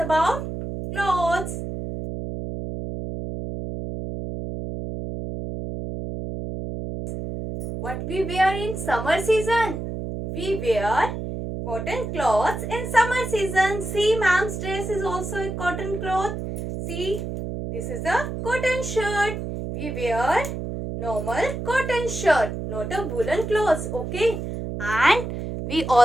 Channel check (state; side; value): noise; right; hum, 5 dB below the sound